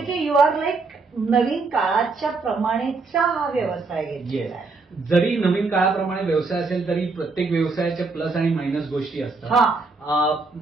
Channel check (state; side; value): quieter; left; 4.0 dB